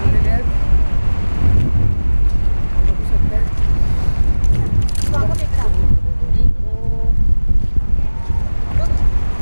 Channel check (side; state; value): both; inverted; correlation -1.00